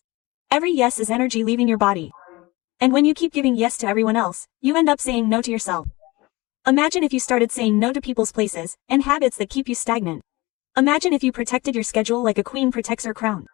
Every yes is energy leaving your body. And when you keep giving yes to everyone else, you end up saying no to yourself. Imagine if you started saying no to people's places and habits that keep you stagnant. Imagine if you protected your schedule like a queen protects her crown.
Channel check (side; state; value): right; quieter; 21.9 dB